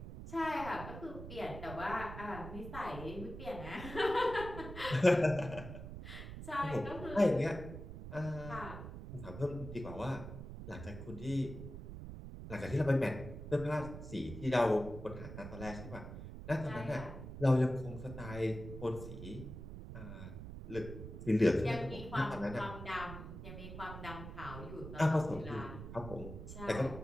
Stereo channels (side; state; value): right; noise; rumble, 10 dB below the sound